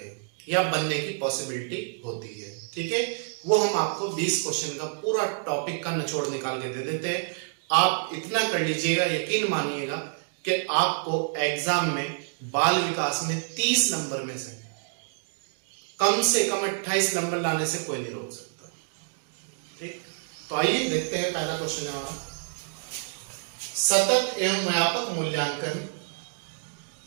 या बनने की पॉसिबिलिटी होती है। ठीक है, वो हम आपको 20 क्वेश्चन का पूरा टॉपिक का निचोड़ निकाल के दे देते हैं। आप इतना कर लीजिएगा, यकीन मानिएगा कि आपको एग्जाम में बाल विकास में 30 नंबर में से कम 28 नंबर लाने से कोई नहीं रोक सकता। ठीक, तो आइए देखते हैं। पहला क्वेश्चन है हमारा, सतत एवं व्यापक मूल्यांकन।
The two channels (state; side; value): silent; left; digital silence